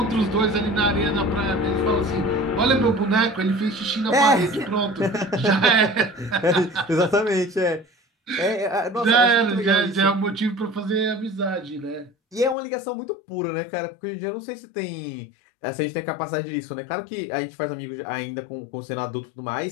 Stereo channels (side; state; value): right; drops out; at 12.6 s